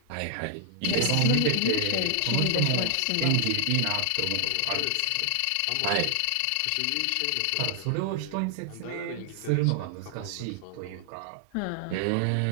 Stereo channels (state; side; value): different; both; correlation 0.00